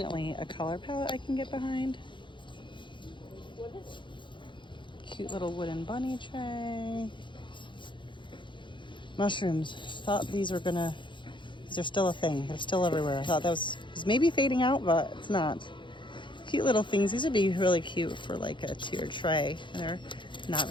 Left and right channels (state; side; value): late; right; 0.23 ms